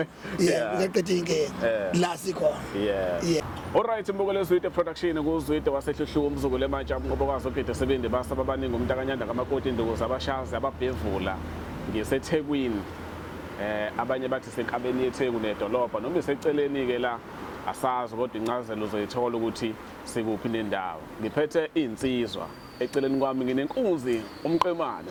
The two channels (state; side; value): identical; both; correlation 1.00